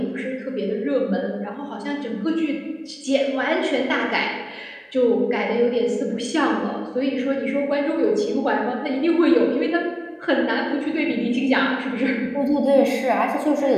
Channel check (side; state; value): both; identical; correlation 1.00